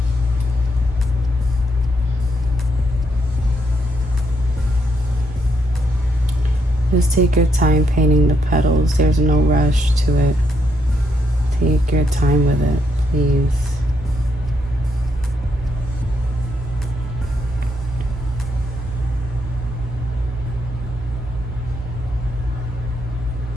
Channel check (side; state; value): both; normal; correlation 0.77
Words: Just take your time painting the petals. There's no rush to it. Take your time with it, please.